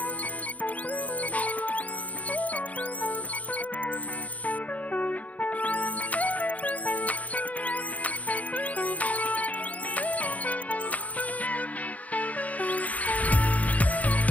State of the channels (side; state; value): right; late; 0.072 ms